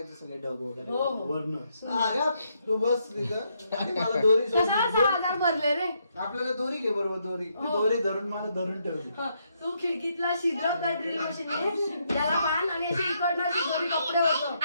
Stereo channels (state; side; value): inverted; both; correlation -0.76